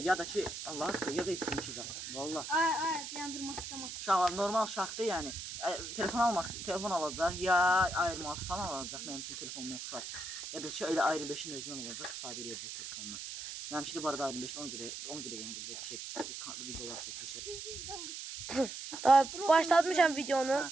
da ki Allah haqqı, ya da isim ki zat. Vallahi. Ay, dayandır maska. Uşaqlar normal uşaqdır, yəni telefon alacaq, ya ayırma falan alacaq, mənim üçün telefonum oxşar. Ya da ki elə ayrı 5-in özündən olacaq, istifadə edəcək telefondan. Mənim üçün də bu arada ayrı 5-dən ona görə yenə belə videolar çəkirsən. Daha başlatmışam videonu.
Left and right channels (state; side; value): noise; right; hiss, 8 dB below the sound